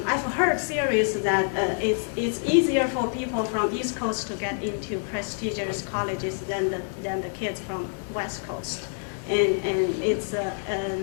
heard theories that it's easier for people from East Coast to get into prestigious colleges than the kids from West Coast, and it's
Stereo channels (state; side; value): silent; right; 60 dB below the other